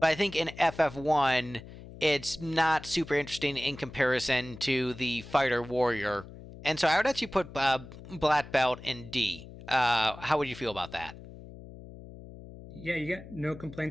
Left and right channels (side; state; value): left; noise; hum, 16 dB below the sound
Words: I think in FF1 it's not super interesting in comparison to the fighter warrior, and so I would actually put black belt in D. How would you feel about that? Yeah, you get no